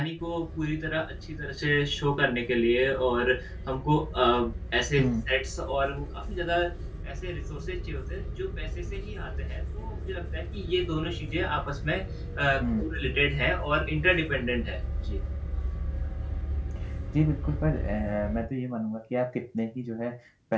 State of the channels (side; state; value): both; identical; correlation 1.00